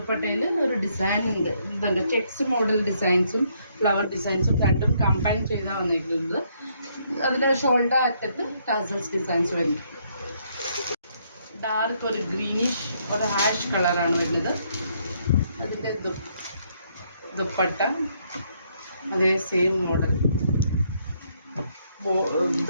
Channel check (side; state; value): both; inverted; correlation -0.71